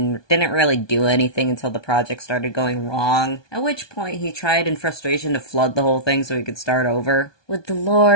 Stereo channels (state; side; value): late; right; 1.2 ms